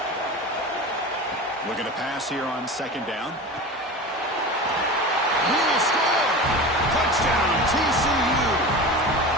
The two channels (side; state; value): both; normal; correlation 0.31